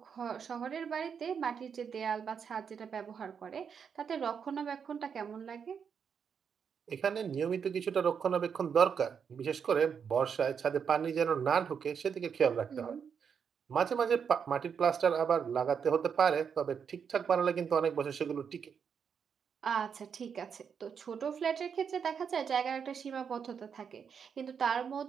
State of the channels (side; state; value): left; quieter; 6.9 dB